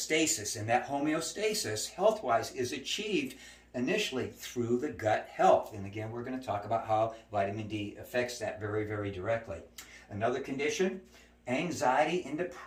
And that homeostasis, health-wise, is achieved initially through the gut health. And again, we're going to talk about how vitamin D affects that very directly. Another condition, anxiety and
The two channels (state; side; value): identical; both; correlation 1.00